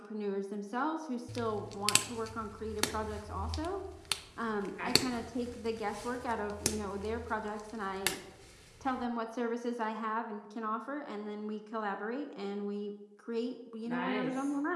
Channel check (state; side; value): identical; both; correlation 1.00